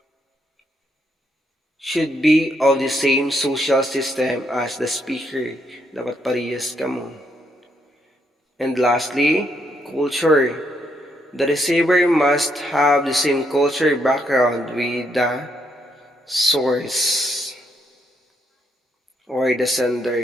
of the same social system as the speaker. Dapat parehas ka mo. And lastly, culture. The receiver must have the same culture background with the source or the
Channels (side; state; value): both; normal; correlation 0.75